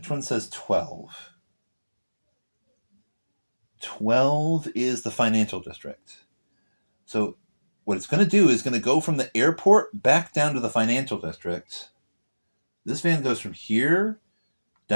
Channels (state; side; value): inverted; both; correlation -1.00